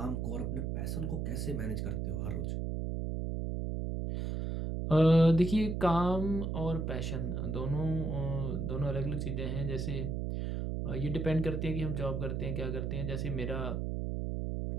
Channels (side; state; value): right; noise; hum, 1 dB below the sound